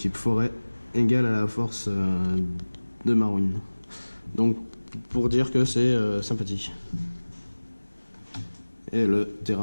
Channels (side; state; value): both; inverted; correlation -1.00